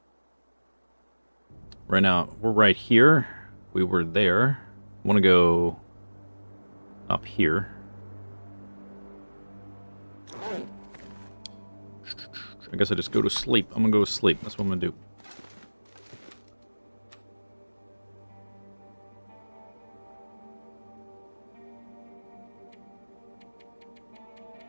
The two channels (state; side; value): inverted; both; correlation -1.00